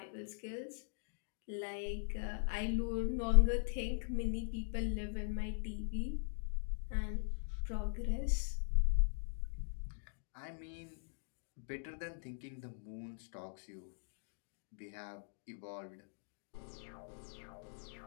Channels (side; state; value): right; silent; digital silence